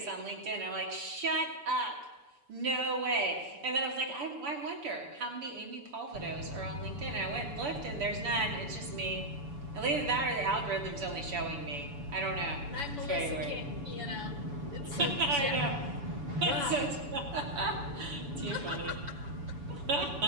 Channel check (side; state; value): left; late; 7.0 ms